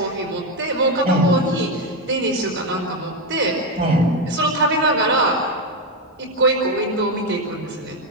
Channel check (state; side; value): normal; both; correlation 0.08